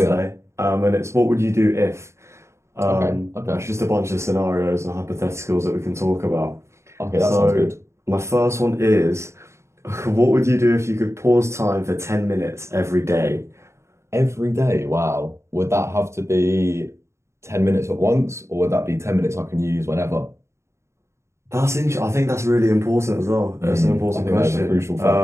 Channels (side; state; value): left; late; 0.13 ms